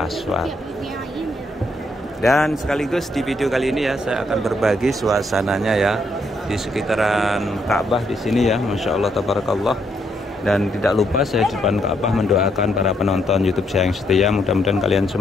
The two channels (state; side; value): normal; both; correlation 0.75